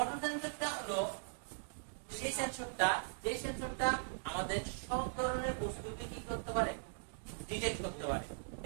সেন্সরটা হলো সেই সেন্সরটা আমাদের সব ধরনের বস্তুকে কি করতে পারে, ডিটেক্ট করতে পারে,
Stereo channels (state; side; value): silent; left; digital silence